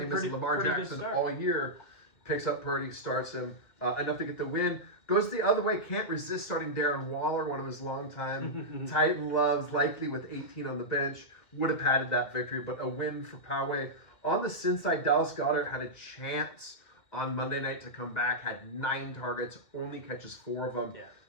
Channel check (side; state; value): right; late; 2.0 ms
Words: is, Lamar Jackson all year. Picks up Purdy, starts him enough to get the win. Goes the other way, can't resist starting Darren Waller, one of his longtime Titan loves, likely with 18 on the bench. Would have padded that victory, but a win for Poway. On the Sin side, Dallas Goedert had a chance on Monday night to come back, had 9 targets, only catches 4 of them. Yeah.